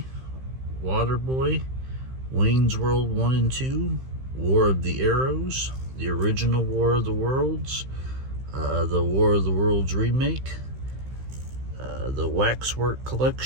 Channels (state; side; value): late; left; 15 ms